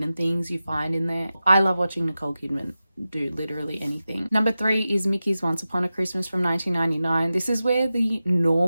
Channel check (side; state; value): both; inverted; correlation -0.94